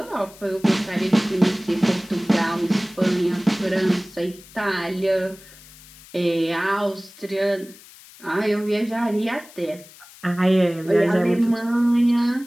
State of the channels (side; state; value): left; noise; hiss, 21 dB below the sound